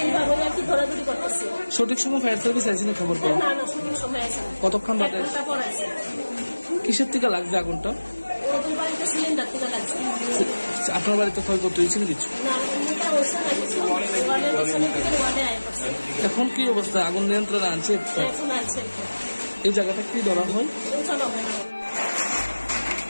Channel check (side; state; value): both; inverted; correlation -1.00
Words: এইভাবে আর কি ধরাধরি করতেছে। সঠিক সময় ফায়ার সার্ভিস আইসি না খবর পাও? না না, সঠিক সময় আছে। কতক্ষণ বাদে? পরে আছে। কিসের থেকে লাগছে আগুনটা? ওদের বাড়িতে সিলিন্ডার থেকে লাগছে। আপনার বাড়িতে ক্ষয়ক্ষতি হয়েছে না কিছু? না, এমনিটা হচ্ছে না কিছু। ওয়ার্ডের পিছনে থেকে ওয়ার্ডে আয় করছে। এখন কি অবস্থা? আগুন নিয়ন্ত্রণে আনছে? এখন আছে। এই জায়গাটা কি ধরা হয়? চলো